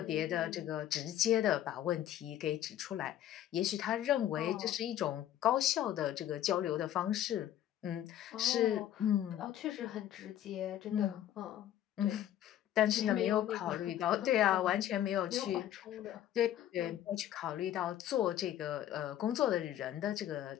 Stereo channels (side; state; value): right; quieter; 11.8 dB